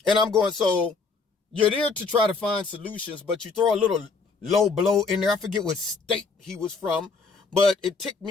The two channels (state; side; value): quieter; right; 4.4 dB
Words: And I'm going, so you're there to try to find solutions, but you throw a little low blow in there. I forget what state he was from, but it ticked